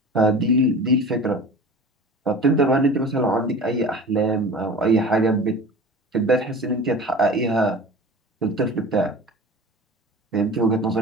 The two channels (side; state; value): both; normal; correlation 0.37